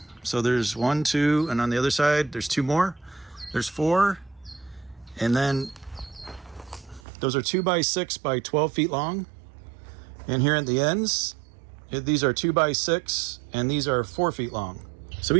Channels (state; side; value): drops out; left; at 7.0 s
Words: So there's 1, 2, and on the other side, there's 2 more. There's 4. And then those are 2x6 by 12 feet long. And here at the ends, these are 2x6, and these are 4 feet long. So